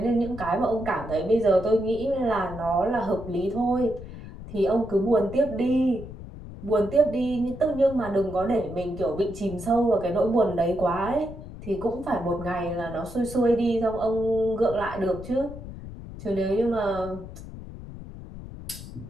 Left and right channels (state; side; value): noise; left; rumble, 12 dB below the sound